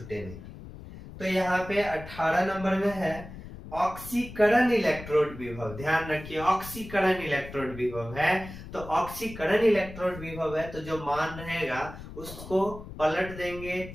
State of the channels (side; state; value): left; noise; rumble, 13 dB below the sound